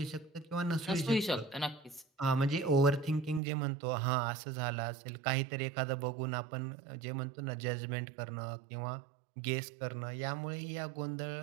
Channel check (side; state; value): left; drops out; at 3.4 s